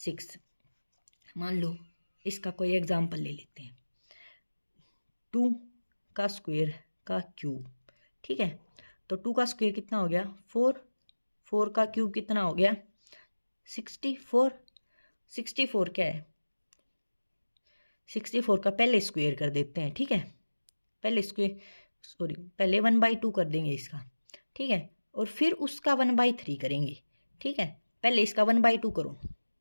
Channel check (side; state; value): both; inverted; correlation -1.00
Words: मान लो इसका कोई एग्जाम्पल ले लेते हैं, 2 का स्क्वायर का क्यूब, ठीक है। तो 2 का स्क्वायर कितना हो गया, 4। 4 का क्यूब कितना हो गया, 64। 64 क्या है, 64 का पहले स्क्वायर कर देते हैं, ठीक है। पहले स्क्वायर, सॉरी, पहले 1/2 कर देंगे इसका, ठीक है। और फिर उसका 1/3 करेंगे, ठीक है। पहले इसका 1/2 करो,